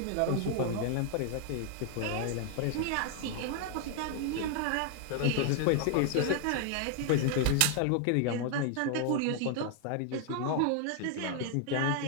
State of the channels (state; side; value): different; both; correlation 0.00